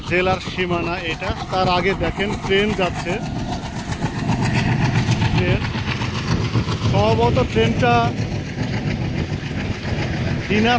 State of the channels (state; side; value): identical; both; correlation 1.00